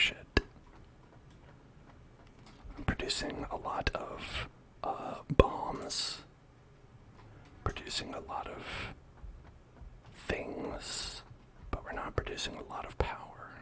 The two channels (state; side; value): identical; both; correlation 1.00